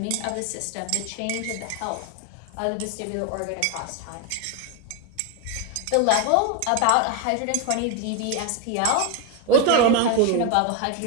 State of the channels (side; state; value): both; different; correlation 0.02